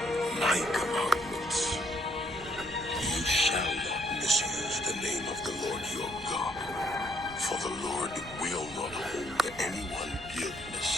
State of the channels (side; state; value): right; noise; rumble, 17 dB below the sound